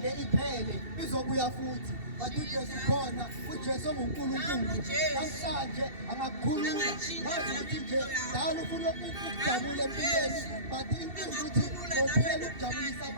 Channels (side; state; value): left; late; 2.7 ms